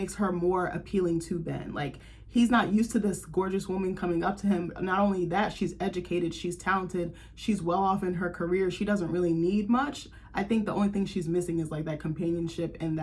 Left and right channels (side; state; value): both; identical; correlation 1.00